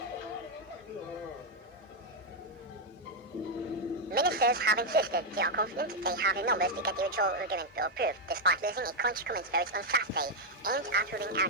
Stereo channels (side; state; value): both; normal; correlation 0.01